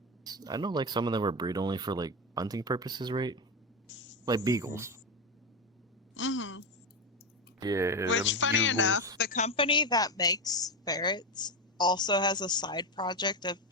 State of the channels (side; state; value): both; normal; correlation 0.12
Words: I know like some of them were bred only for like hunting purposes, right? Like beagles. hmm Yeah. Which, them funny bugles. enough, the company that makes ferrets also has a side project of